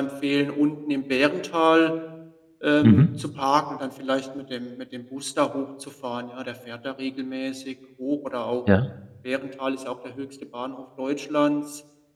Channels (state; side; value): identical; both; correlation 1.00